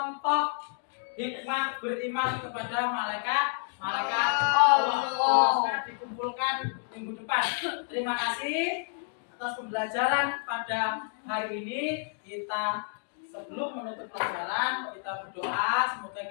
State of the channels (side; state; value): right; silent; 57 dB below the other